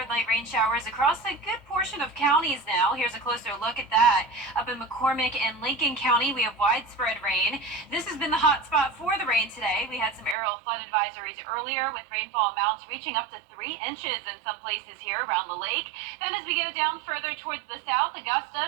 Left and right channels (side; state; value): left; drops out; at 10.4 s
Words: light rain showers across a good portion of counties now. Here's a closer look at that. Up in McCormick and Lincoln County, we have widespread rain. This has been the hot spot for the rain today. We had some aerial flood advisories earlier with rainfall amounts reaching up to 3 inches in some places here around the lake. Then as we go down further towards the south, Augusta